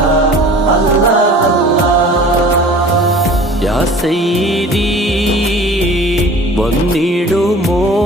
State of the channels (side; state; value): both; normal; correlation 0.44